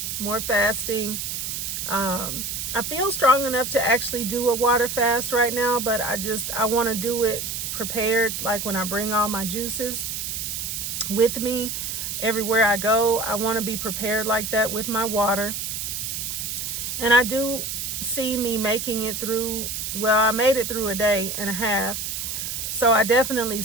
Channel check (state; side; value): noise; right; hiss, 4 dB below the sound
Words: fasting. I feel strong enough to actually do a water fast right now, but I want to do it prepared, like when I bring all my juices with me everywhere I go. I want to be prepared like that with my water. And I do see me making it through, well, I made it through a day and a half. So I definitely